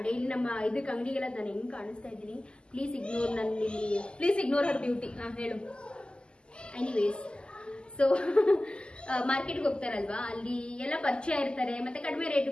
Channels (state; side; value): late; right; 0.049 ms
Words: ಡೈಲಿ ನಮ್ಮ ಇದಕ್ಕೆ ಅಂಗಡಿಗೆಲ್ಲ ನಾನು ಹೆಂಗ್ ಕಾಣಿಸ್ತಾ ಇದ್ದೀನಿ. Please ignore Har beauty. ಹೇಳು. ಎನಿವೇಸ್, ಸೊ ಮಾರ್ಕೆಟ್ಗೆ ಹೋಗ್ತಾರಲ್ವಾ, ಅಲ್ಲಿ ಎಲ್ಲ ಪರಿಚಯ ಇರ್ತಾರೆ, ಮತ್ತೆ ಕಡಿಮೆ